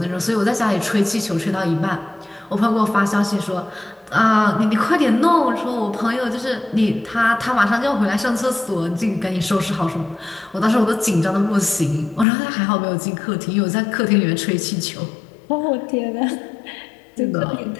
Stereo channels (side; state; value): right; drops out; at 12.2 s